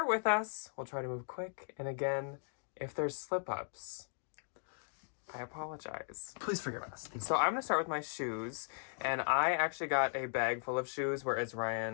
with us. We'll try to move quick. And again, if there's slip-ups, I apologize. Please forgive us. So I'm going to start with my shoes. And I actually got a bag full of shoes, whereas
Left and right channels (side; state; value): right; silent; digital silence